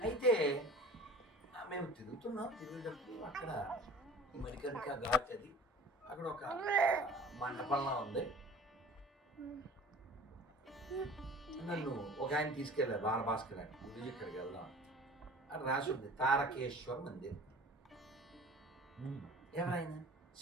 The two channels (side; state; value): both; normal; correlation 0.43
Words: అయితే మేము తిరుగుేటప్పుడు అక్కడ మరికరిక ఘాట్ అది, అక్కడ ఒక మండపంలా ఉంది. నన్ను ఒక ఆయన తీసుకెళ్ళారు, బాలభాస్కర్ అని. గురించి ఇక్కడికి వెళ్దాం అని రాసి ఉంది, తారకేశ్వర్ మందిర్. ఎవరైనా